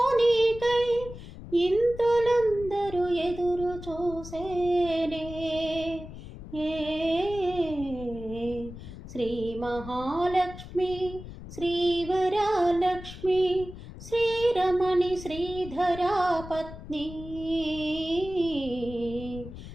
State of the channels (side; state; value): left; noise; rumble, 13 dB below the sound